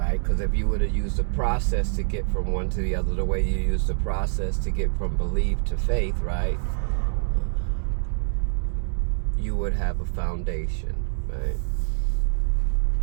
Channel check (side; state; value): left; silent; digital silence